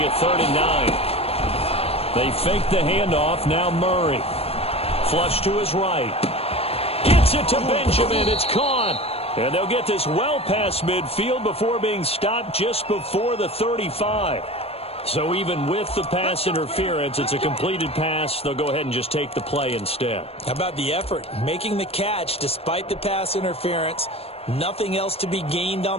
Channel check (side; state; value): right; late; 0.29 ms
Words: 3rd and 9. They fake the handoff. Now Murray. Flush to his right. Gets it to Benjamin. It's caught. And they'll get this well past midfield before being stopped just before the 35. So even with the pass interference, it's a completed pass. They'll go ahead and just take the play instead. How about the effort? Making the catch despite the pass interference. Nothing else to be gained